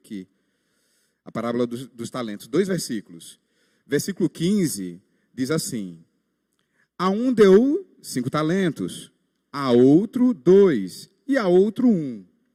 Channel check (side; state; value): both; identical; correlation 1.00